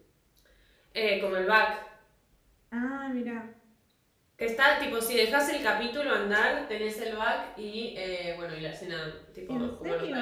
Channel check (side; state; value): both; identical; correlation 1.00